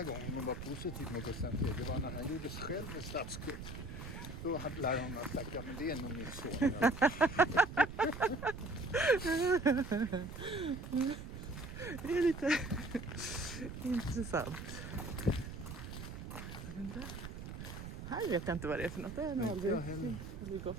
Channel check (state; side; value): noise; right; rumble, 9 dB below the sound